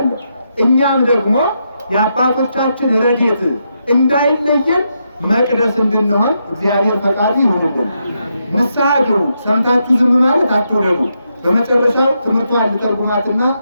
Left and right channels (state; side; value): inverted; both; correlation -0.82